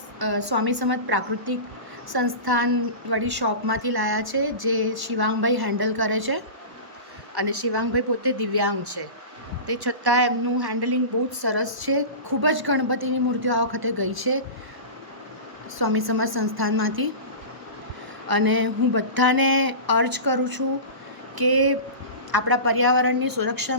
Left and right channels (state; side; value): late; left; 1.1 ms